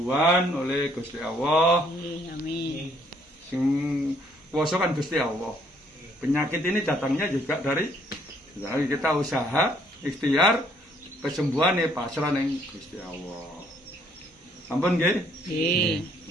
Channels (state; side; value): normal; both; correlation 0.66